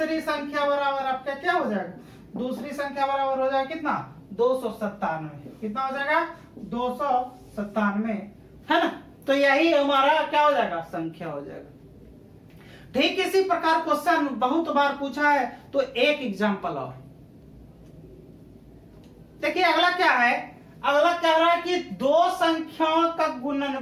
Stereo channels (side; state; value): both; identical; correlation 1.00